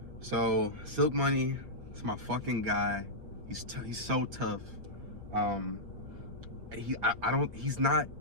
So, Silk Money, it's my fucking guy. He's so tough. He's not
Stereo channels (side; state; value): left; late; 6.1 ms